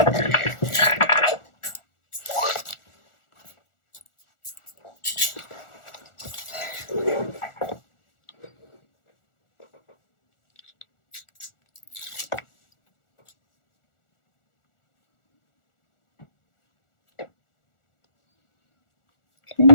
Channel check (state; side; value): late; right; 1.4 ms